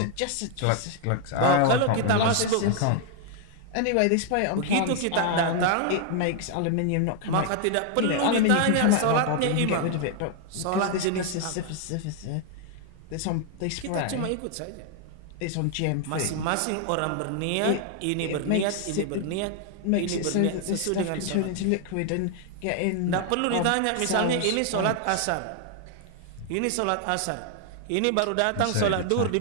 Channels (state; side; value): different; both; correlation 0.00